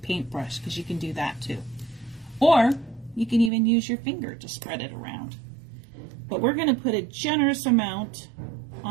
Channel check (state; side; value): drops out; left; at 3.5 s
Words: because you can do that too. Or you can even use your finger to spread it around. But we're going to put a generous amount